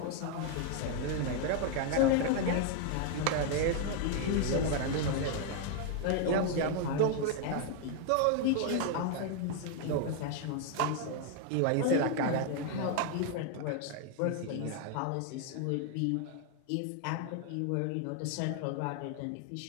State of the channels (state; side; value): different; both; correlation 0.00